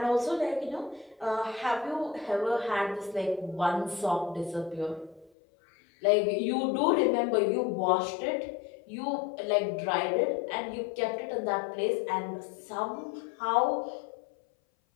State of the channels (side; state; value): right; drops out; at 5.3 s